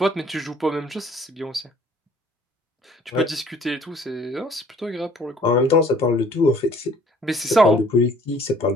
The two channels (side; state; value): both; normal; correlation 0.56